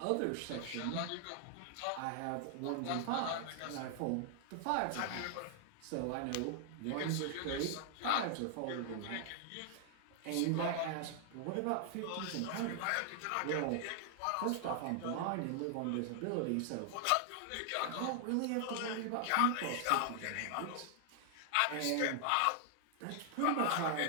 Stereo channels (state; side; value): different; both; correlation 0.00